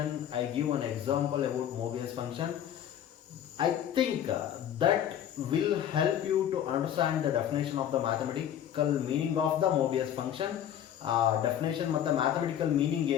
I give an example about Mobius function. I think that will help you to understand the definition of the mathematical meaning of the Mobius function. Definition ಮತ್ತು mathematical meaning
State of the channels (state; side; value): quieter; right; 10.2 dB